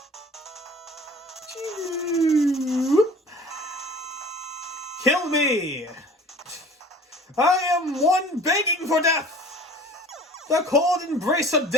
Kill me! I am one begging for death! The cold embrace of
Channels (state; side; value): normal; both; correlation 0.44